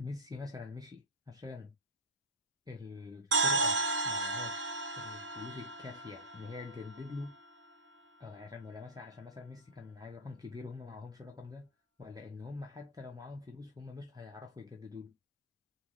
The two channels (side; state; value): both; normal; correlation -0.16